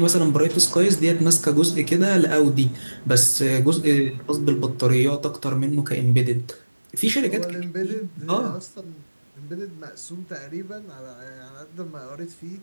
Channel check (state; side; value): inverted; both; correlation -1.00